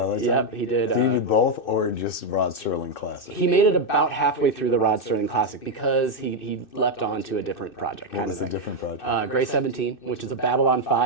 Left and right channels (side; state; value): right; late; 2.6 ms